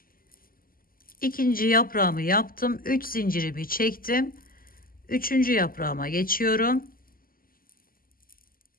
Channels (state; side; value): late; right; 0.42 ms